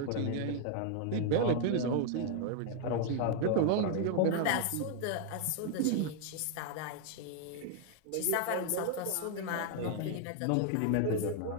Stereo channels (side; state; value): both; different; correlation 0.00